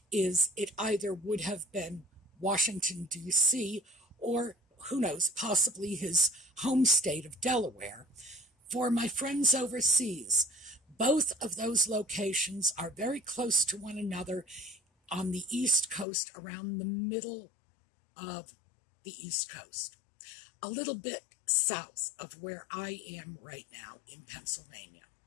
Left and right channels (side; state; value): right; drops out; at 16.1 s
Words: is it either would have been Washington, D.C., or, who knows, possibly his home state of Delaware. For my friends overseas, both of those locations are very close to one another on the East Coast, around the middle of the East Coast, a little bit south of where I am right now in Pennsylvania.